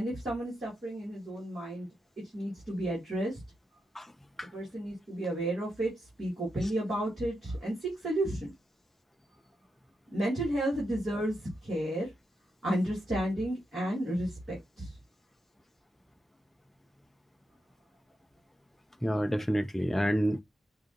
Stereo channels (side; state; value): both; normal; correlation 0.86